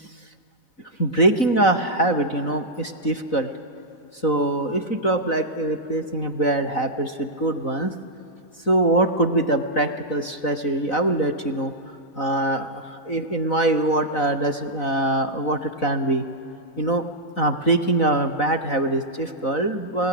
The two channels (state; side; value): late; right; 4.0 ms